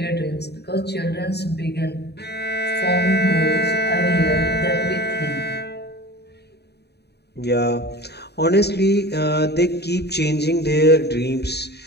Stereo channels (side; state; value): right; late; 0.48 ms